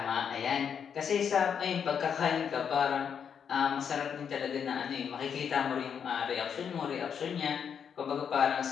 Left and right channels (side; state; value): right; quieter; 7.4 dB